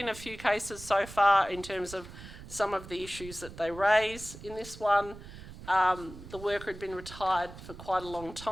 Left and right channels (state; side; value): noise; right; rumble, 15 dB below the sound